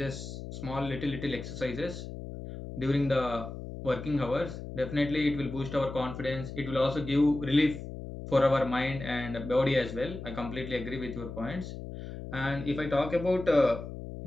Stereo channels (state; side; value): noise; left; hum, 9 dB below the sound